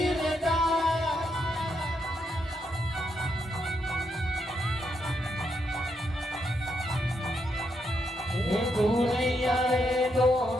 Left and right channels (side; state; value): both; normal; correlation 0.79